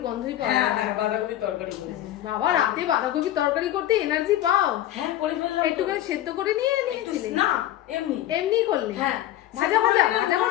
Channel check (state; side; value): quieter; right; 13.1 dB